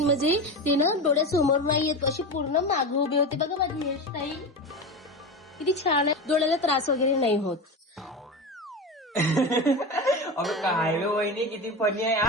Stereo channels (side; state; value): both; normal; correlation 0.23